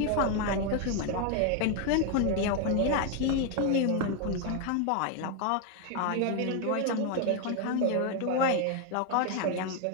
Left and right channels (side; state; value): both; different; correlation 0.01